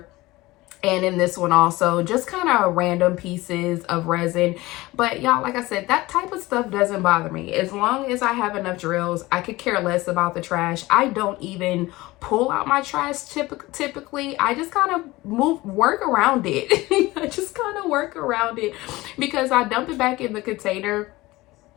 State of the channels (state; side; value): quieter; right; 19.7 dB